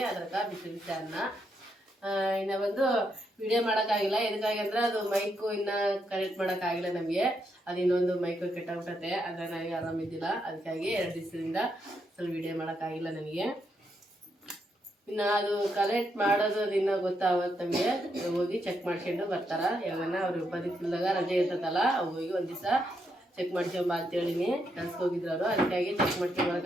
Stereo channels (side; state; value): both; normal; correlation 0.79